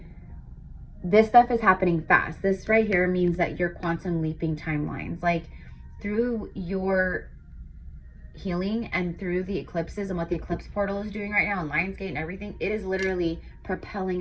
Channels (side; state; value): both; identical; correlation 1.00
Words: this stuff is happening fast. This right here means that you're quantum leaping timelines. Like, through your healing and through the eclipses and what the eclipse portal is doing right now and Lionsgate and everything, it is literally